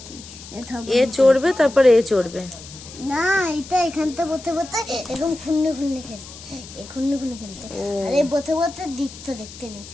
এ চড়বে, তারপরে এ চড়বে। না, এটা এখানটা বসে বসে এরকম খুন্নে খুন্নে খেলতে, এই খুন্নে খুন্নে খেলতে, আর এই বসে বসে দৃশ্য দেখতে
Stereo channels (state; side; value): noise; left; hiss, 16 dB below the sound